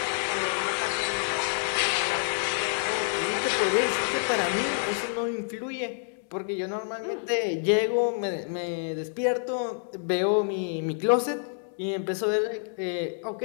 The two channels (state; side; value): silent; right; digital silence